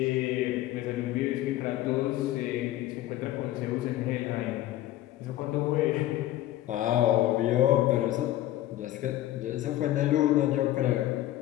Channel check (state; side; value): quieter; right; 14.4 dB